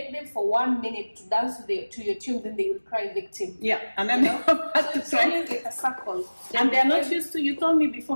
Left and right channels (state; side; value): inverted; both; correlation -1.00